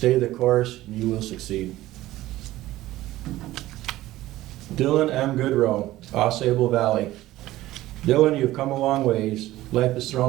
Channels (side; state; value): left; quieter; 16.1 dB